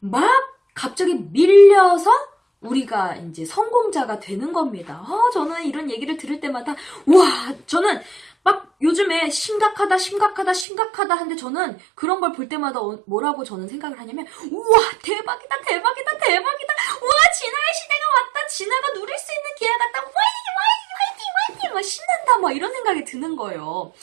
갑자기 밀려서 우리가 이제 성공자가 되는 겁니다. 저는 이런 얘기를 들을 때마다 저는 막 요즘에 심각하다 하는데 저는 그런 걸 볼 때마다 뭐라고 저는 생각을 하냐면 우와 대박이다 우와 진화의 시대가 왔다, 진화가 누릴 수 있는 기회가 왔다, 화이팅 막 신난다 막 이런 생각이 드는 거예요.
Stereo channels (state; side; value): drops out; left; at 10.7 s